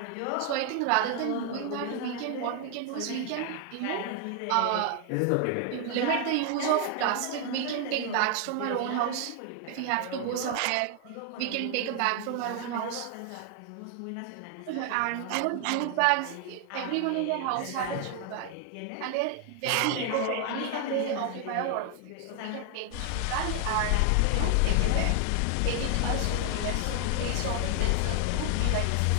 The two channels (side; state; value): both; different; correlation 0.00